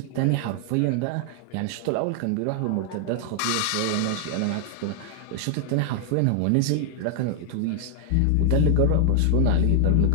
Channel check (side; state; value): both; different; correlation -0.01